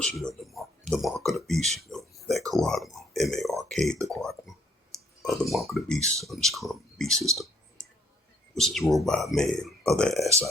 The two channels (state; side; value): normal; both; correlation 0.65